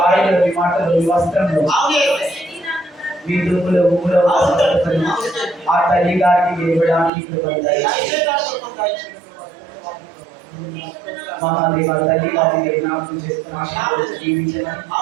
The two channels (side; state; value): left; drops out; at 7.1 s